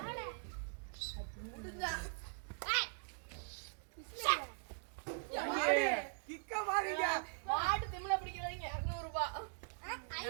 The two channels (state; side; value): silent; left; digital silence